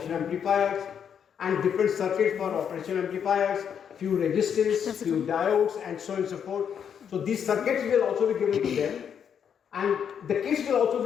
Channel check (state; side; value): quieter; right; 7.9 dB